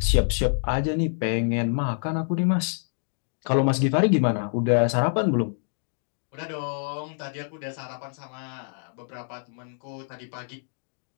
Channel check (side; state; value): right; silent; digital silence